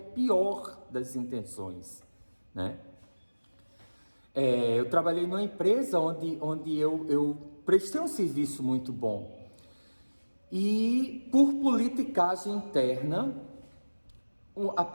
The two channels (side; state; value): both; inverted; correlation -1.00